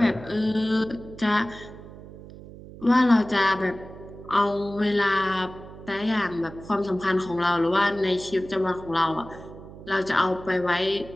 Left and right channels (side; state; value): right; noise; hum, 16 dB below the sound